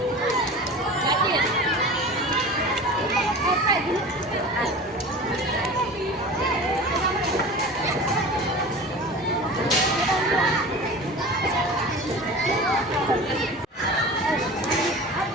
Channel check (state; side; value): normal; both; correlation 0.35